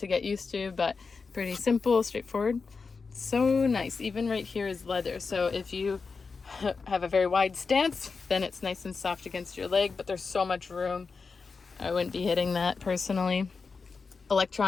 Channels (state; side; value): quieter; right; 4.8 dB